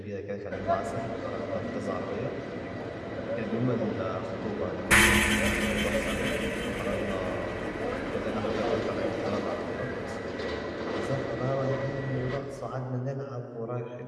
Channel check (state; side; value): identical; both; correlation 1.00